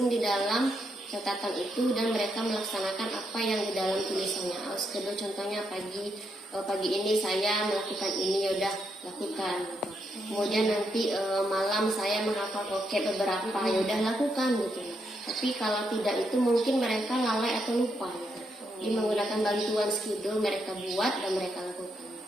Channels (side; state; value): both; normal; correlation 0.80